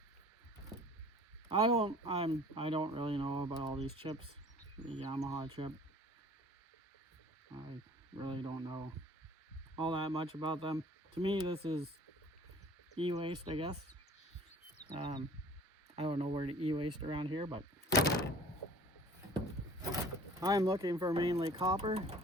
I don't really know about all these chips. The Yamaha chip. I really don't know all that much about them. To me, this is e-waste, I guess. I don't know where to e-waste around here, but I'm looking for mainly copper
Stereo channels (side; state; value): both; normal; correlation 0.49